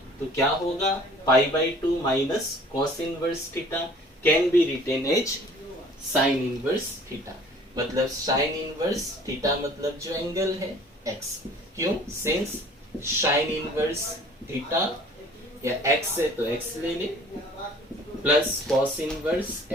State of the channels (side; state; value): both; normal; correlation 0.51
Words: तो क्या होगा? pi/2 minus cos inverse theta can be written as sine inverse theta. मतलब साइन इनवर्स थीटा मतलब जो एंगल है x. क्यों? सिंस साइन इनवर्स थीटा या x है तो x ले ले plus cos inverse